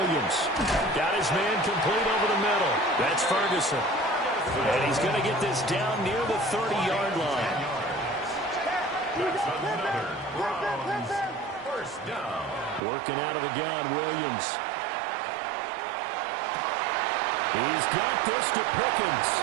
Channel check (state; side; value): drops out; left; at 12.8 s